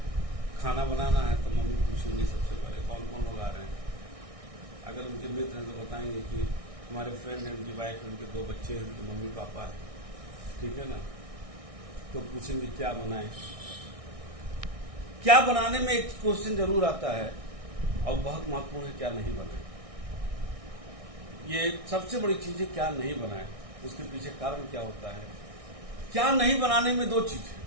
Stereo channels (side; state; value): left; late; 1.6 ms